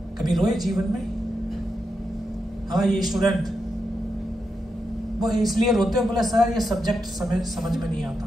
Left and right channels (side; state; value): both; normal; correlation 0.86